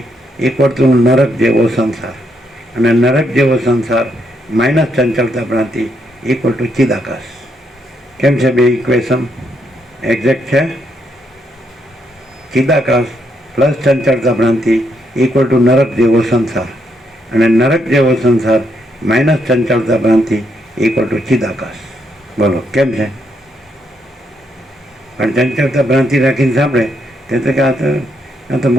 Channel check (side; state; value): both; normal; correlation 0.77